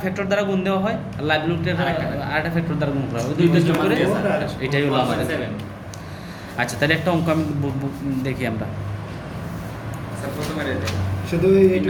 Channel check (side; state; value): both; identical; correlation 1.00